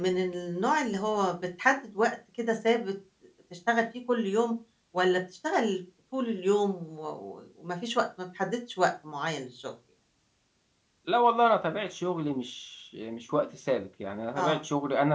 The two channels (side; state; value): both; identical; correlation 1.00